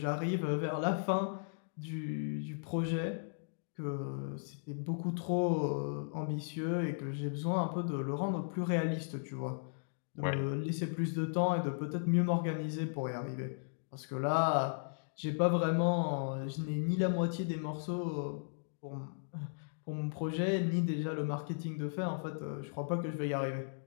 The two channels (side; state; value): right; silent; digital silence